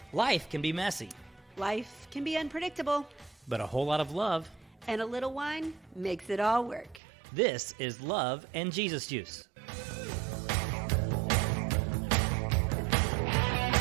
Life can be messy, Life can be unpredictable, but a whole lot of love. and a little wine makes it all work. This is Love and Jesus Juice.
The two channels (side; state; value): left; drops out; at 7.0 s